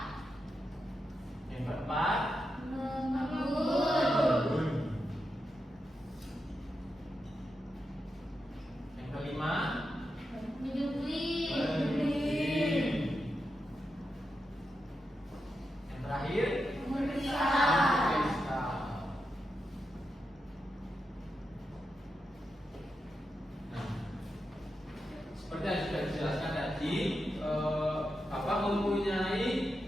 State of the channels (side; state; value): both; normal; correlation 0.87